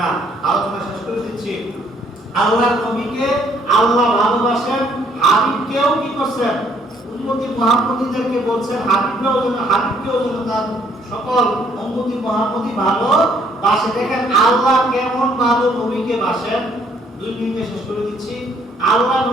না। আলোচনা শেষ করে দিচ্ছি। আল্লাহর নবীকে আল্লাহ ভালোবাসেন, হাবিবকেও কি করছেন? উম্মতি মুহাম্মদীদেরকে বলছেন হাবিবকেও যেন তার সকল উম্মতি মুহাম্মদী ভালোবাসে। দেখেন আল্লাহ কেমন ভালো নবীকে বাসেন। 2 মিনিটে শেষ করে দিচ্ছি। আল্লাহ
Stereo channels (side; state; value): both; normal; correlation 0.65